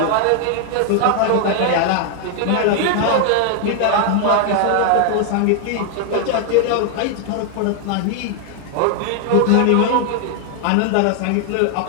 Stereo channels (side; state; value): both; different; correlation 0.00